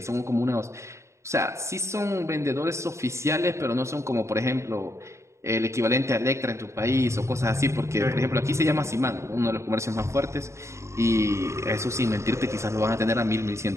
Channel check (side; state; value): left; late; 0.14 ms